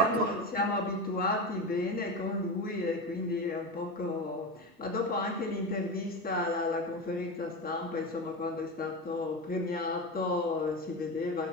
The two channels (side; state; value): both; normal; correlation 0.21